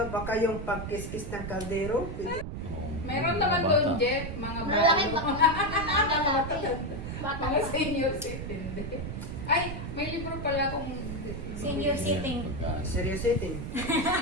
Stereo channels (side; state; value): right; noise; rumble, 6 dB below the sound